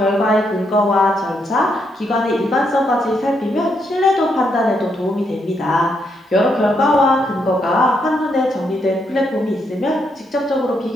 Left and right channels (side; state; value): both; normal; correlation 0.78